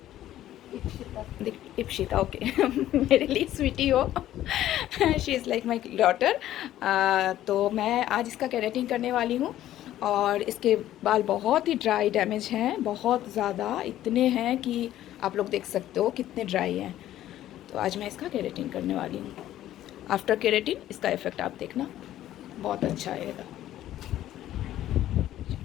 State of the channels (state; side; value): quieter; right; 13.1 dB